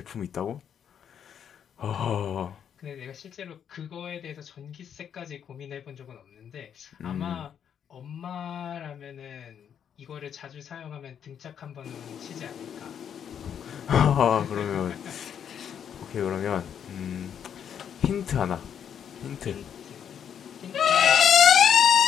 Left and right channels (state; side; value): quieter; right; 8.5 dB